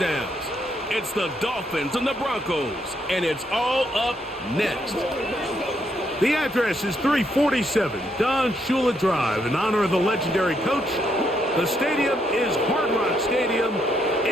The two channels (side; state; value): both; normal; correlation 0.75